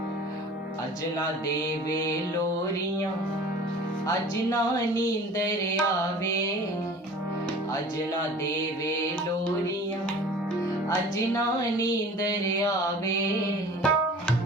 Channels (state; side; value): normal; both; correlation 0.44